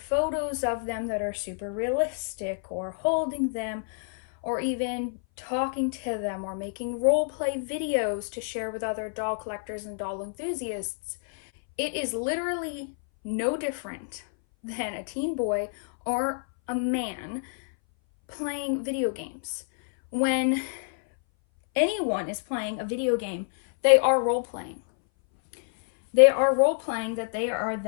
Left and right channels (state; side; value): silent; right; 58 dB below the other